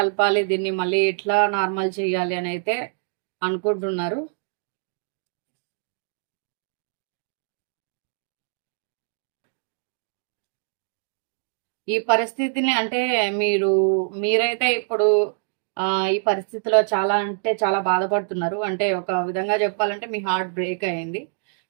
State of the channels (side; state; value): left; silent; digital silence